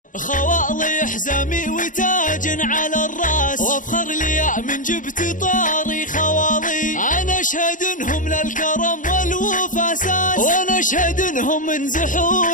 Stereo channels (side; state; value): right; late; 0.38 ms